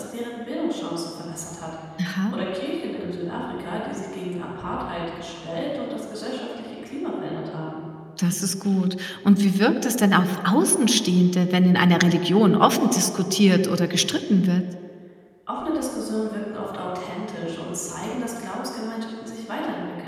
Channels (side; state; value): both; identical; correlation 1.00